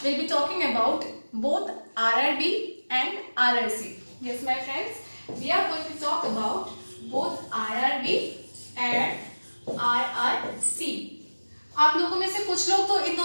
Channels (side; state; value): both; inverted; correlation -1.00